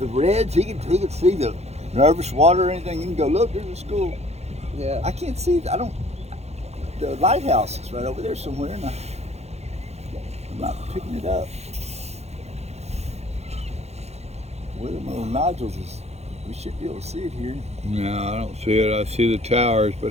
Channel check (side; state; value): left; late; 0.31 ms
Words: the Reds, he can see the nervous water or anything. He can go, look, there's a school. Yeah. I can't see. The lighthouse is right over there somewhere, and I'm not picking it up. Where the little nodules is, we should be able to see it here. No, I don't see it. I see the towers,